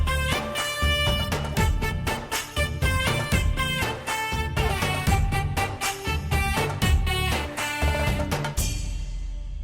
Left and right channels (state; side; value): identical; both; correlation 1.00